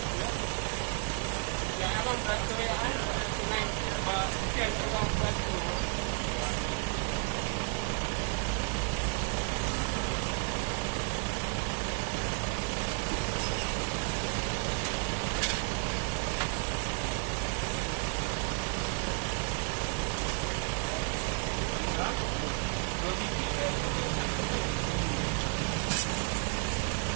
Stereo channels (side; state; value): left; quieter; 37.4 dB